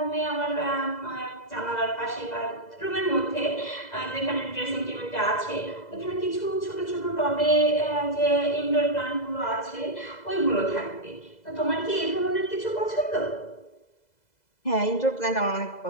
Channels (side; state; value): right; late; 2.0 ms